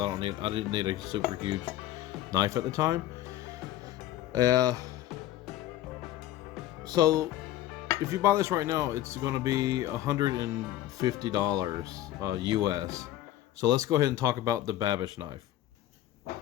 didn't need a super huge knife at the time. So if you buy this right now, it's going to be $150 US. So let's go ahead and talk about the Babish knife.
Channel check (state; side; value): quieter; right; 13.5 dB